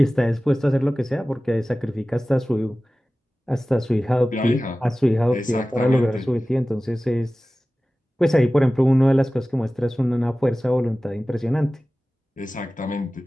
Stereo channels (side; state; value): both; normal; correlation 0.97